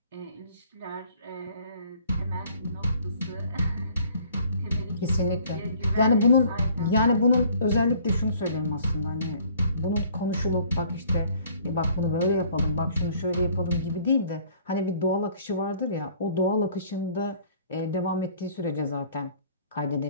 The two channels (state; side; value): inverted; both; correlation -0.56